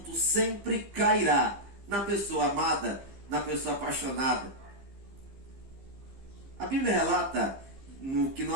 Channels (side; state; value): left; late; 15 ms